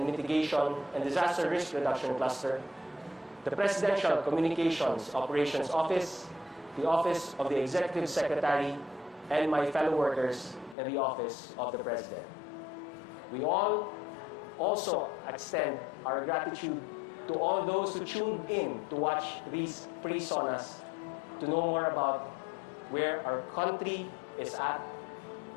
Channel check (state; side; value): drops out; right; at 10.8 s